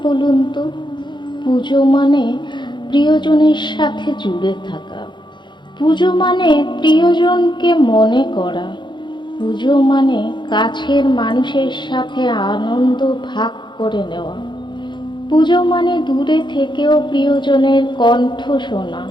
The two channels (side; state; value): right; late; 0.22 ms